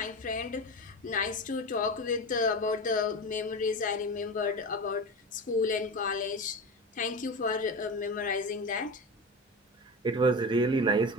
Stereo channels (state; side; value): normal; both; correlation 0.24